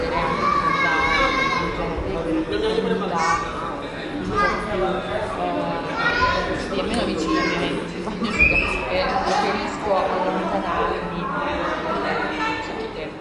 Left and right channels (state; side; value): identical; both; correlation 1.00